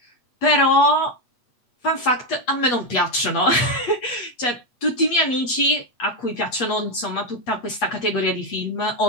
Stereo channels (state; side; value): late; right; 8.4 ms